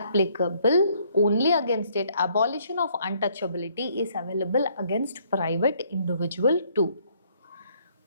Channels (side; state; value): both; inverted; correlation -0.66